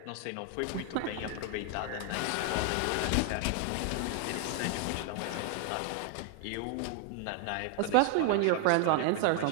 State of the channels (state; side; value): different; both; correlation 0.00